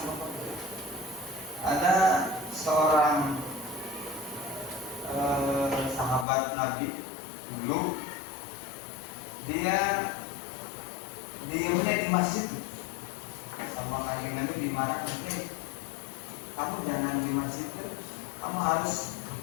bekerja. Ada seorang sahabat Nabi dulu, dia diamnya di masjid sama kanjeng Nabi dimarahin, kamu jangan di masjid, kamu harus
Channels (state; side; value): drops out; right; at 6.2 s